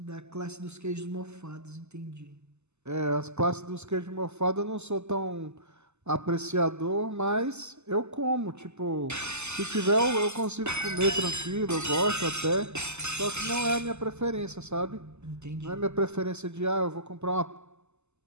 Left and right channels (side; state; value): left; late; 0.82 ms